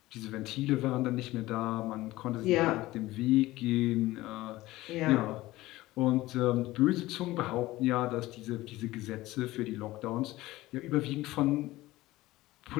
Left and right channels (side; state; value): right; quieter; 17.9 dB